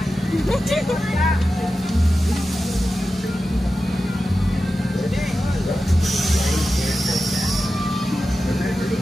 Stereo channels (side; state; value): both; normal; correlation 0.92